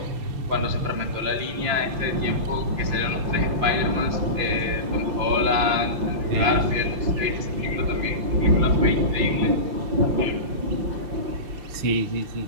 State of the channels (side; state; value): left; late; 5.8 ms